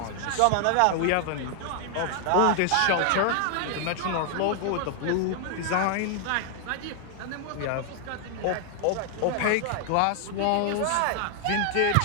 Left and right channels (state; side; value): different; both; correlation 0.00